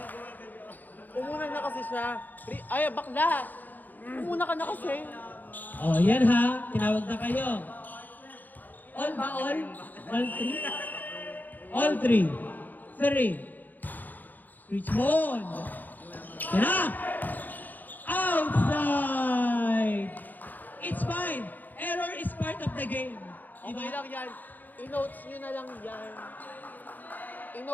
Umuna na kasi siya. Ay, bakla! Umuna ka na kasi. Oh, yan ha. Tinawag na kayo. All ba all? All three? All three. Three. Richmond. Yan na. Outside. It's fine. Error is part of the game. Okay lang yan. I-notes nyo na lang yan.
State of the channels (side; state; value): right; late; 0.085 ms